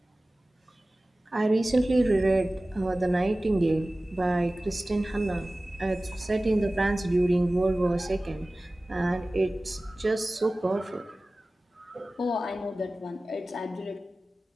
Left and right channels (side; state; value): both; normal; correlation 0.97